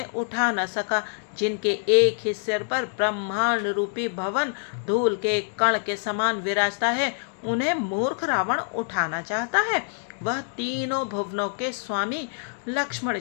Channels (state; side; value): silent; right; 61 dB below the other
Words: उठा न सका। जिनके एक ही सिर पर ब्रह्मांड रूपी भवन धूल के कण के समान विराजता है, उन्हें मूर्ख रावण उठाना चाहता है। वह तीनों भुवनों के स्वामी लक्ष्मण